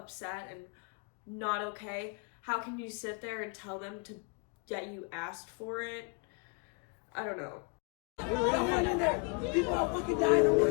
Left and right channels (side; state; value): right; quieter; 34.2 dB